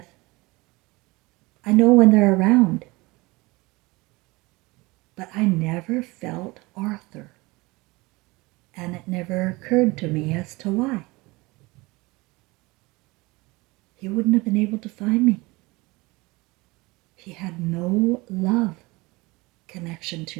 I know when they're around. But I never felt Arthur. And it never occurred to me as to why. He wouldn't have been able to find me. He had no love connection to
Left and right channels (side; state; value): left; quieter; 23.3 dB